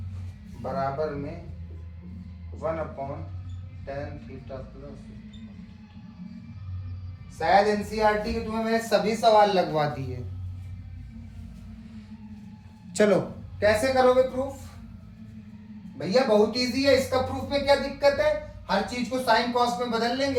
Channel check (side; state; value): both; identical; correlation 1.00